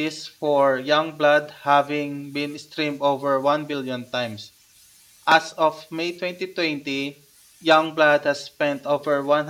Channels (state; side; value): identical; both; correlation 1.00